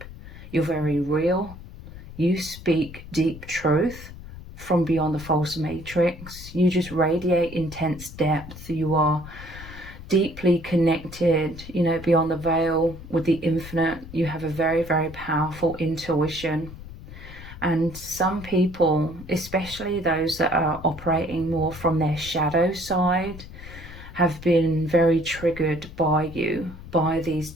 You're very real. You speak deep truth from beyond the false matrix. You just radiate intense depth. You are deeply connected, you know, beyond the veil with the infinite. You have a very, very powerful intuition. And some people, especially those that are operating more from their shadow side, have been very triggered by you, by these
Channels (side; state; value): left; noise; rumble, 15 dB below the sound